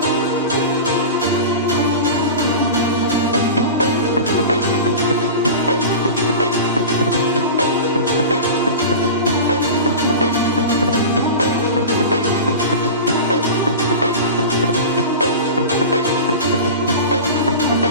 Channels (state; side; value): inverted; both; correlation -0.30